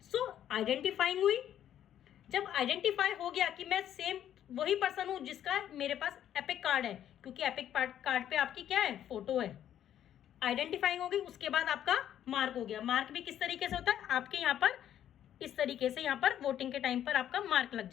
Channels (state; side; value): quieter; right; 10.7 dB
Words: सो आइडेंटिफाइंग हुई। जब आइडेंटिफाई हो गया कि मैं सेम वही पर्सन हूं जिसका मेरे पास एपिक कार्ड है, क्योंकि एपिक कार्ड पे आपकी क्या है? फोटो है। आइडेंटिफाइंग हो गई, उसके बाद आपका मार्क हो गया। मार्क भी किस तरीके से होता है? आपके यहाँ पर इस तरीके से यहाँ पर वोटिंग के टाइम पर आपका मार्क लग